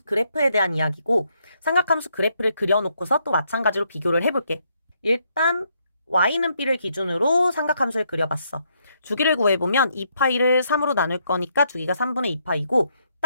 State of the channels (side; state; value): both; inverted; correlation -0.74